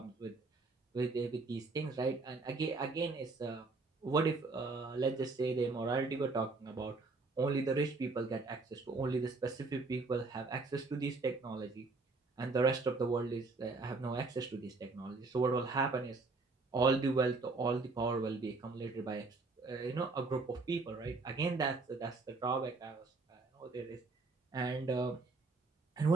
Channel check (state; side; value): quieter; left; 3.7 dB